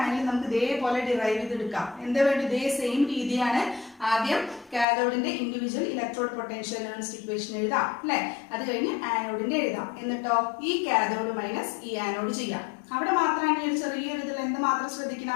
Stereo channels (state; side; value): drops out; right; at 4.9 s